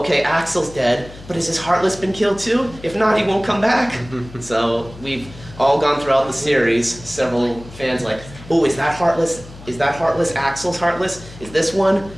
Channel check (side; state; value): left; noise; hum, 17 dB below the sound